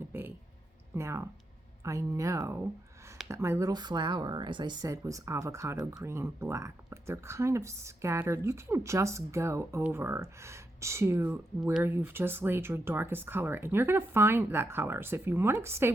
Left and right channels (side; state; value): both; normal; correlation 0.83